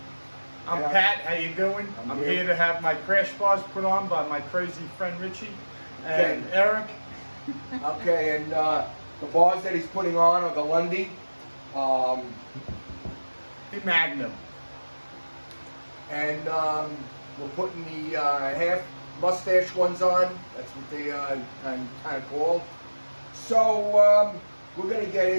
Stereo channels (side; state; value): both; inverted; correlation -1.00